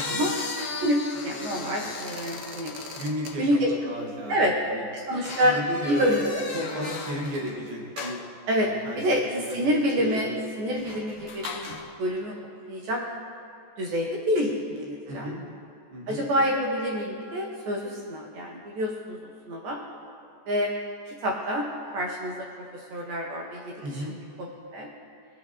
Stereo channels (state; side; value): late; left; 14 ms